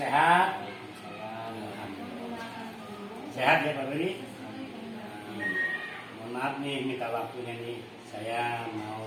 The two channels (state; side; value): identical; both; correlation 1.00